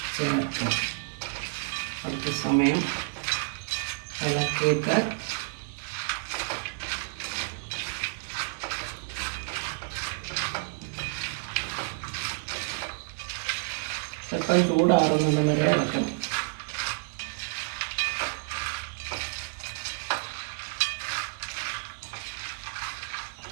ചേർക്കുക. കുറച്ച് സമയം ഇളക്കിയിട്ട് സ്വല്പം ചൂടാറുന്നത് വരെ ഇളക്കണം.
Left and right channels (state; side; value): silent; left; digital silence